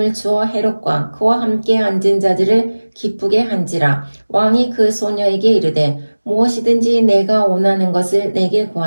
추어 헤롯과 그와 함께 앉은 자들을 기쁘게 한지라. 왕이 그 소녀에게 이르되 무엇이든지 내가 원하는 것을 내게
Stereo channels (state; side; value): inverted; both; correlation -1.00